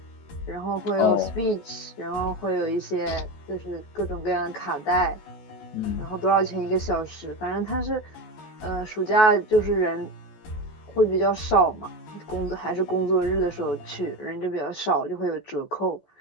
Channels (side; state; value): right; late; 14 ms